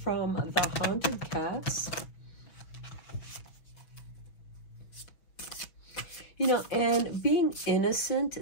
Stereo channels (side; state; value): right; late; 6.1 ms